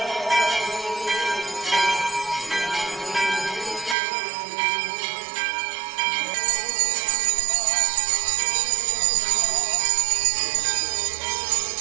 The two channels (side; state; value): left; drops out; at 4.0 s